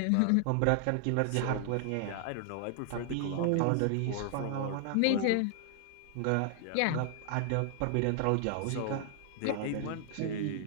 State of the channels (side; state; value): both; different; correlation 0.00